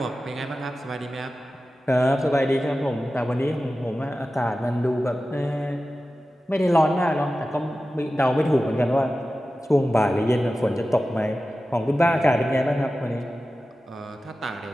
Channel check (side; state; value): both; normal; correlation 0.94